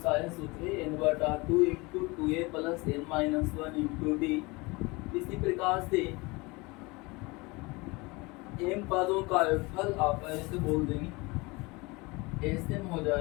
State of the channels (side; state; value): right; quieter; 25.0 dB